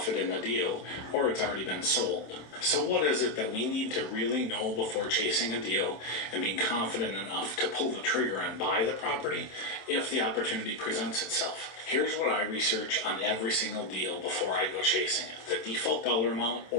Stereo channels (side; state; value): right; late; 26 ms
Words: in the deal or it's already been sold. So what is it that we need to really know before chasing a deal and being confident enough to pull the trigger and buy the property if the opportunity presents itself? Here's what I research on every single deal before I go chasing it: the default dollar amount